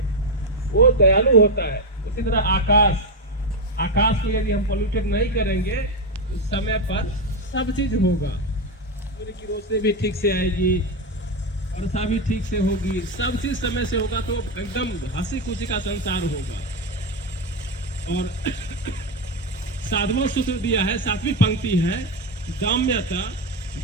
वो दयालु होता है। उसी तरह आकाश को यदि हम पोल्यूटेड नहीं करेंगे तो समय पर सब चीज होगा। सूर्य की रोशनी भी ठीक से आएगी, वर्षा भी ठीक से होगी, सब चीज समय से होगा, तो एकदम हंसी खुशी का संसार होगा। और साधवां सूत्र दिया है, 7वीं पंक्ति है, दाम्यता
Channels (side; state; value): both; normal; correlation 0.08